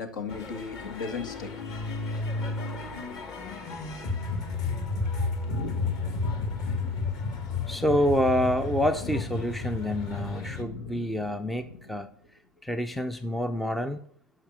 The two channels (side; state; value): both; normal; correlation 0.56